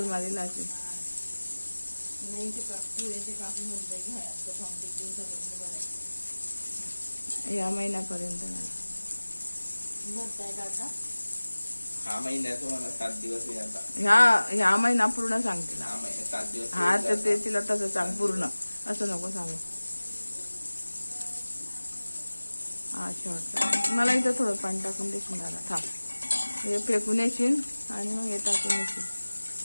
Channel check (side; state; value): both; inverted; correlation -1.00